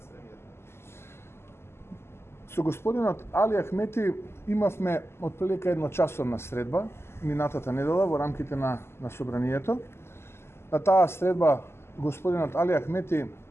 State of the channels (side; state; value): right; late; 0.12 ms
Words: премиер? Со господинот Али Ахмети имавме отприлика едночасовна средба минатата недела во рамките на собранието. На таа средба господинот Али Ахмети